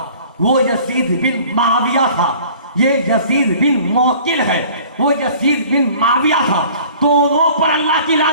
وہ یزید بن معاویہ تھا، یہ یزید بن معقل ہے، وہ یزید بن معاویہ تھا۔ دونوں پر اللہ کی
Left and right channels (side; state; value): both; inverted; correlation -0.49